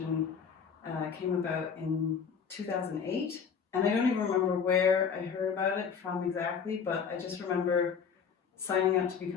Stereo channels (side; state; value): right; quieter; 6.5 dB